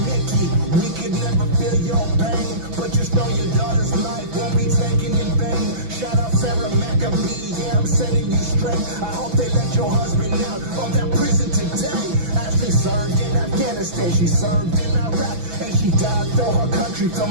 Mickey. We could never feel your pain, but just know your daughter's life won't be taken in vain. Shout out Sarah McAbee. Yeah, I'm sending you straight. I hope they let your husband out of that prison today. Ashley served in Afghanistan, she served in Iraq, and she died for her country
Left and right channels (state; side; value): late; left; 6.0 ms